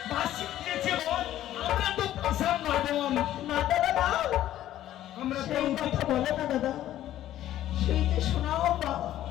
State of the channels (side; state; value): right; quieter; 13.0 dB